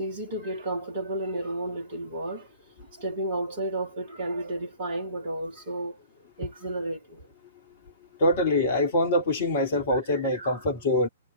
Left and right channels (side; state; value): both; inverted; correlation -0.47